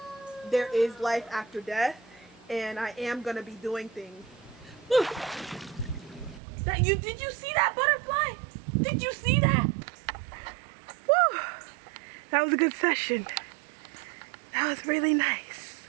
there is life after death, and I am gonna be doing things. Look, did you see that butterfly? Did you see that? Woo! That was a good session. That was really nice.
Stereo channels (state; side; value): drops out; left; at 6.4 s